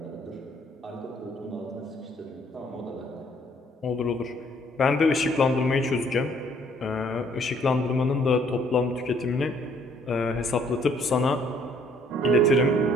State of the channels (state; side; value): normal; both; correlation 0.63